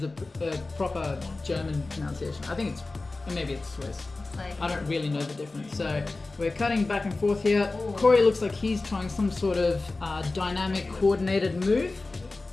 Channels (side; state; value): right; quieter; 3.4 dB